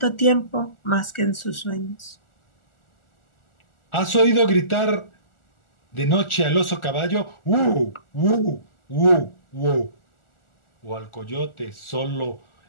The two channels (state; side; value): late; right; 1.4 ms